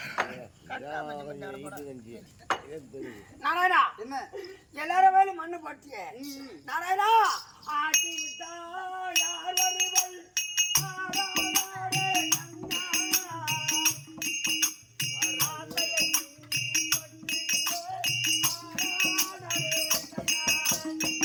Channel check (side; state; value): both; identical; correlation 1.00